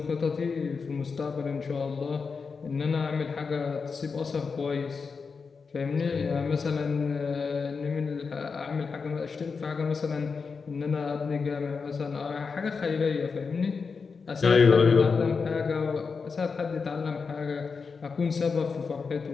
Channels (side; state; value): right; quieter; 5.1 dB